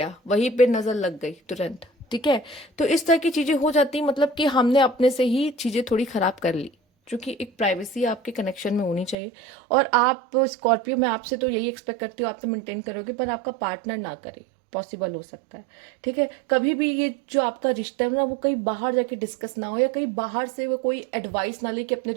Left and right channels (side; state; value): left; drops out; at 9.2 s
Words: वहीं पे नजर लग गई तुरंत, ठीक है। तो इस तरह की चीजें हो जाती, मतलब कि हमने अपने से ही चीजें थोड़ी खराब कर ली, क्योंकि एक प्राइवेसी आपके कनेक्शन में होनी चाहिए। और आप स्कॉर्पियो, मैं आपसे तो यही एक्सपेक्ट करती हूँ, आप तो मेंटेन करोगे, पर आपका पार्टनर ना करे, पॉसिबल हो सकता है, ठीक है। कभी भी ये जो आपका रिश्ता है ना, वो कहीं बाहर जाके डिस्कस ना हो, या कहीं बाहर से वो कोई एडवाइस ना ले कि अपने